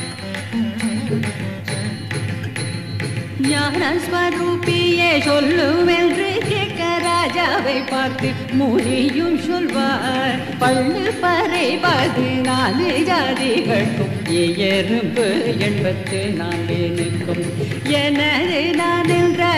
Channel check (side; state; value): both; identical; correlation 1.00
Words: ஞானஸ்வரூபியே சொல்லுவென்று கேட்க ராஜாவை பார்த்து முனியும் சொல்வார். பள்ளு பறை 14 ஜாதிகளுக்கும் எறும்பு 84 எனது நான் என்ற